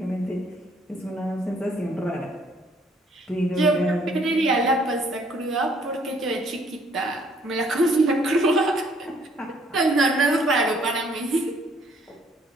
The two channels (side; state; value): both; normal; correlation 0.64